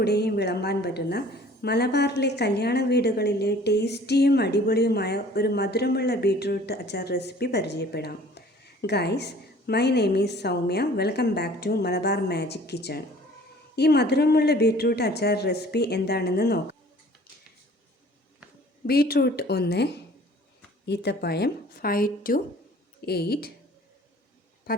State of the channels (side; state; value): both; normal; correlation 0.51